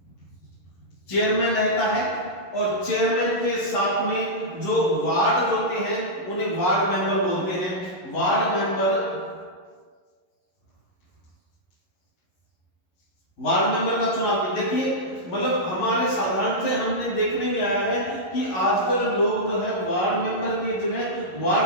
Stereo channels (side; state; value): right; late; 11 ms